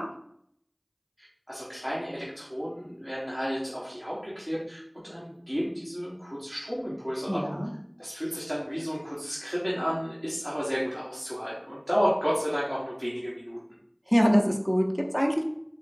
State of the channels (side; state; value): both; identical; correlation 1.00